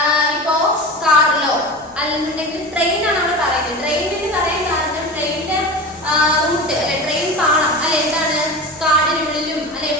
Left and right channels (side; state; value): left; noise; hum, 30 dB below the sound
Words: ഇപ്പോ കാറിലോ അല്ലെന്നുണ്ടെങ്കിൽ ട്രെയിൻ ആണ് നമ്മൾ പറയുന്നത്. ട്രെയിനിന് പറയാൻ കാരണം ട്രെയിനിന്റെ റൂട്ട് അല്ലെ, ട്രെയിൻ പാളം അല്ലെ എന്താണ് കാടിനുള്ളിലും അല്ലെ